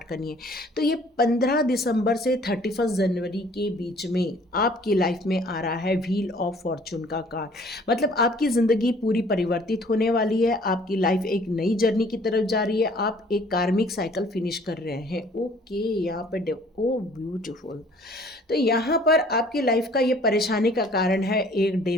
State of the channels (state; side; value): normal; both; correlation 0.55